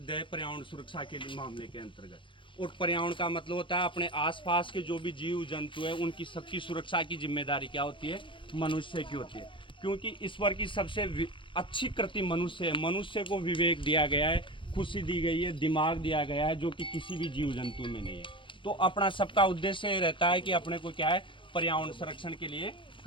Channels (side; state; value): right; late; 0.24 ms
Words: है पर्यावरण सुरक्षा के मामले के अंतर्गत। और पर्यावरण का मतलब होता है अपने आसपास के जो भी जीव जंतु है उनकी सबकी सुरक्षा की जिम्मेदारी क्या होती है? मनुष्य की होती है। क्योंकि ईश्वर की सबसे अच्छी कृति मनुष्य है। मनुष्य को विवेक दिया गया है, खुशी दी गई है, दिमाग दिया गया है, जो कि किसी भी जीव जंतु में नहीं है। तो अपना सबका उद्देश्य रहता है कि अपने को क्या है, पर्यावरण संरक्षण के लिए